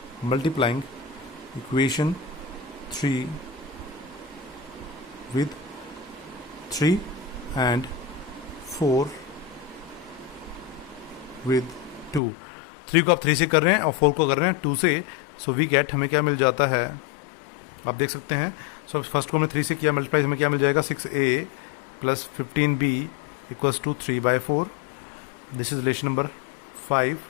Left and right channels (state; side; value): drops out; right; at 12.2 s